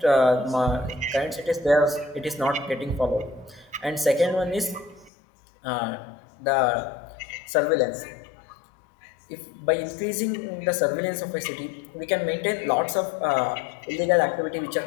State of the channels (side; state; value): right; drops out; at 5.1 s